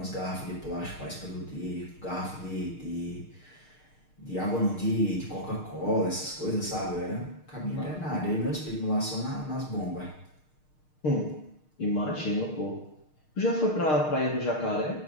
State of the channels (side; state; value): right; late; 6.5 ms